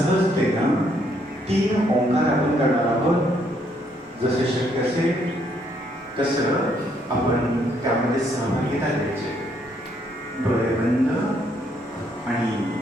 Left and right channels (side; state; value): both; normal; correlation 0.70